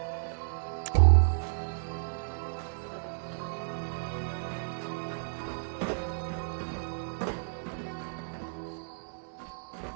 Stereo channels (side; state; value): left; silent; digital silence